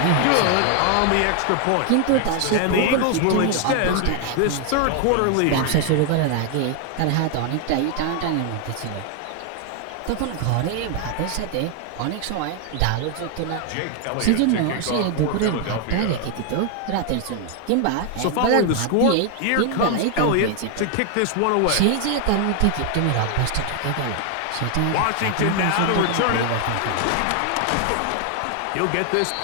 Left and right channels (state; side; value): different; both; correlation 0.00